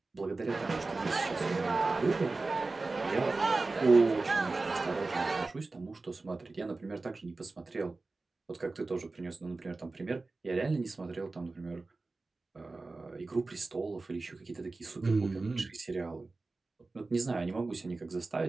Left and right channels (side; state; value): left; quieter; 3.5 dB